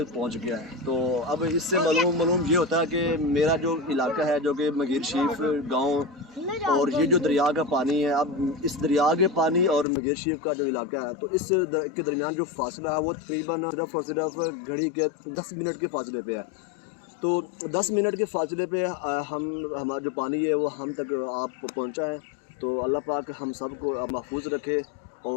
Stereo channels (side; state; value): right; drops out; at 9.9 s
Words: पहुँच गया है। तो अब इससे मालूम ये होता है कि मेरा जो इलाका है, जो कि मंगेर शरीफ गाँव, और ये जो दरिया का पानी है, अब इस दरिया के पानी और मंगेर शरीफ का जो इलाका है, तो इस के दरमियान जो फासला है वो तकरीबन सिर्फ और सिर्फ घड़ी के 10 मिनट के फासले पे है। तो 10 मिनट के फासले पे हमारा जो पानी है वो हम तक आप पहुँचा है। तो अल्लाह पाक हम सबको महफूज रखे।